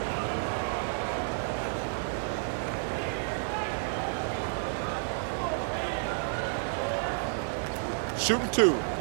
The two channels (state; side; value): silent; left; digital silence